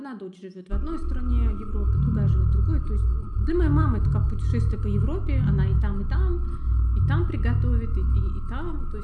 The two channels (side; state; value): both; identical; correlation 1.00